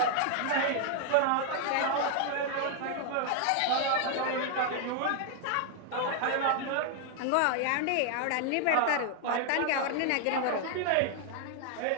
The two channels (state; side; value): different; both; correlation 0.00